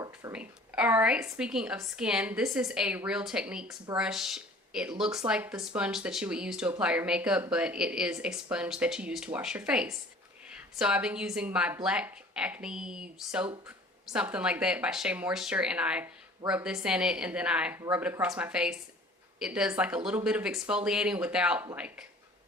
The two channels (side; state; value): both; normal; correlation 0.48